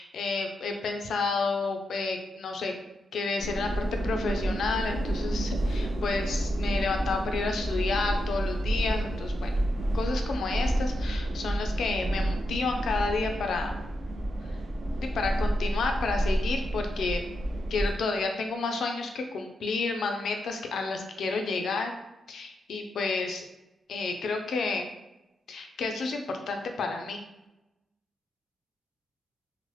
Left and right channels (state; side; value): normal; both; correlation 0.85